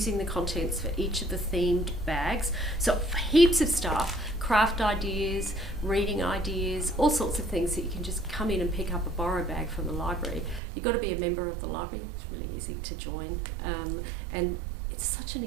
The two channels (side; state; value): left; drops out; at 10.6 s